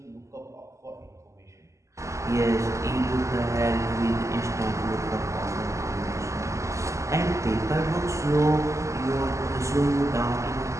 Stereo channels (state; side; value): late; left; 0.15 ms